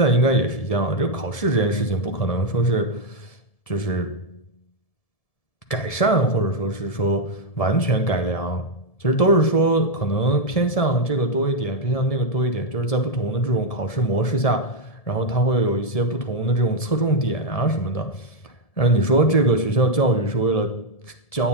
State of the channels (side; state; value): right; late; 1.7 ms